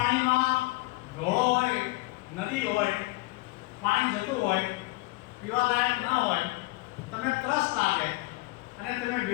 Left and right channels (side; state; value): right; quieter; 22.4 dB